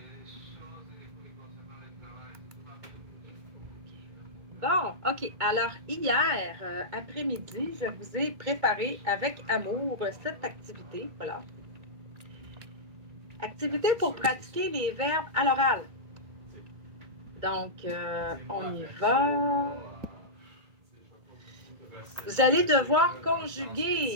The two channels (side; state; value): left; late; 2.2 ms